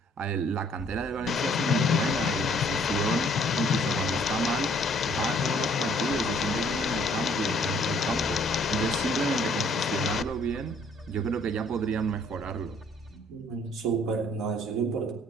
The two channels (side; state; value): both; normal; correlation 0.61